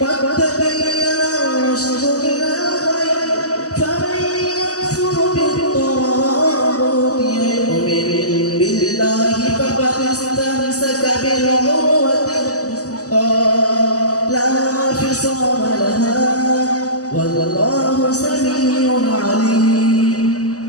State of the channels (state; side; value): late; right; 0.67 ms